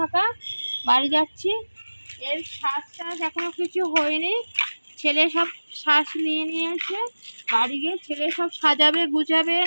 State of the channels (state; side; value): inverted; both; correlation -1.00